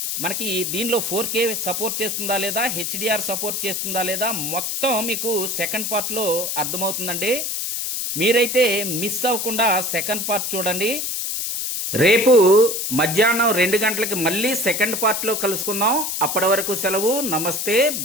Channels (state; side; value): noise; left; hiss, 2 dB below the sound